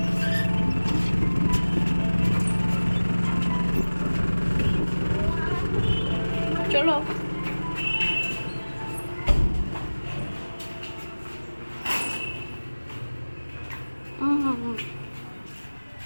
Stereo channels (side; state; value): both; inverted; correlation -1.00